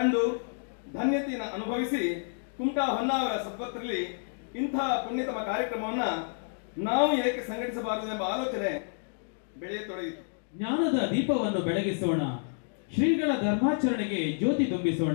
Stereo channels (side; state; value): right; silent; digital silence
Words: ಧನ್ಯತೆಯನ್ನು ಅನುಭವಿಸಿ ಕುಮಟಾ ಹೊನ್ನಾವರ ಸದ್ಭಕ್ತರಲ್ಲಿ ಇಂತಹ ಪುಣ್ಯತಮ ಕಾರ್ಯಕ್ರಮವನ್ನ ನಾವು ಏಕೆ ಸಂಘಟಿಸಬಾರದು ಎಂಬ ಆಲೋಚನೆ ಬೆಳೆಯತೊಡಗಿತು. ಜ್ಞಾನದ ದೀಪವನ್ನು ಬೆಳಗಿಸೋಣ, ಶ್ರೀಗಳ ಧರ್ಮಾಚರಣೆಗೆ ಜ್ಯೋತಿ